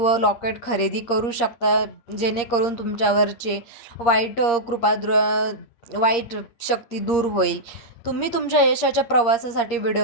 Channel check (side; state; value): right; late; 8.6 ms